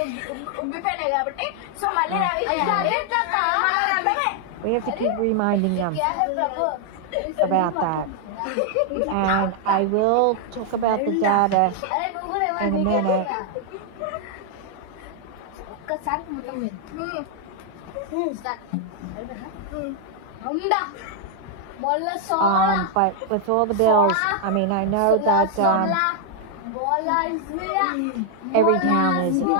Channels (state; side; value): different; both; correlation 0.00